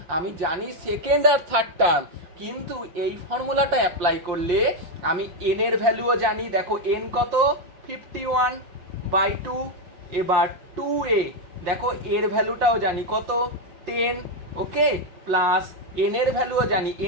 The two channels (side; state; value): left; late; 5.7 ms